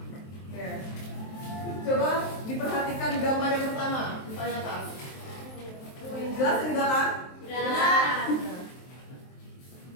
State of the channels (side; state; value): right; late; 23 ms